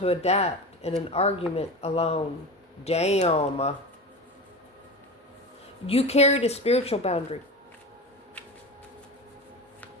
adapt in an argument alone. Damn. You carried a spiritual boundary.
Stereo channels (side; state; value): both; normal; correlation 0.28